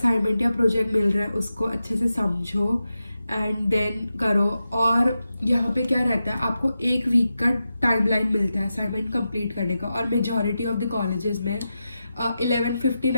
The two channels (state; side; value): inverted; both; correlation -0.90